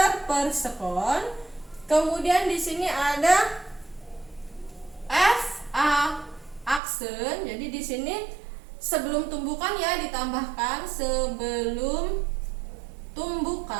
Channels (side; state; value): left; drops out; at 6.8 s